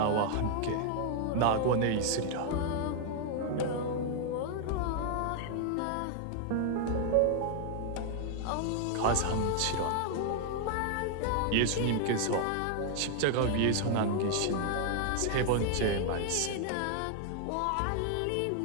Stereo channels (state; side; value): different; both; correlation 0.00